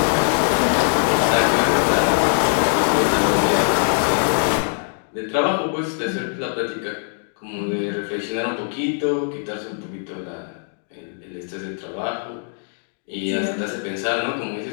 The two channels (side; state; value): right; silent; digital silence